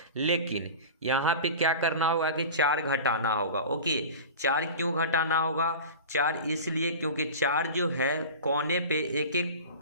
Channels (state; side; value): inverted; both; correlation -0.33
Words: लेकिन यहाँ पे क्या करना होगा कि 4 घटाना होगा। ओके, 4 क्यों घटाना होगा? 4 इसलिए क्योंकि 4 जो है कोने पे एक एक